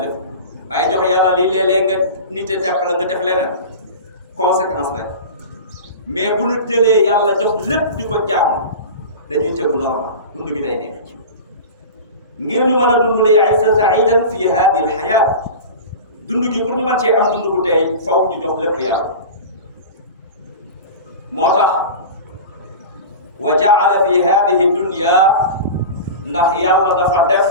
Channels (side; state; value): both; inverted; correlation -0.31